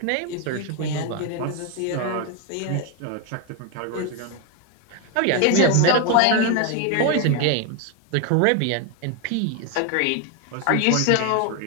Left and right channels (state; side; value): different; both; correlation 0.01